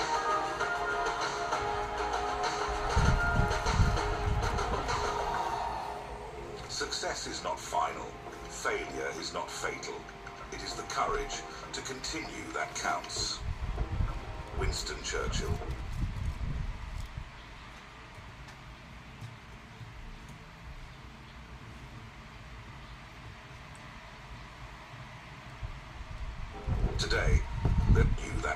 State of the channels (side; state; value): both; identical; correlation 1.00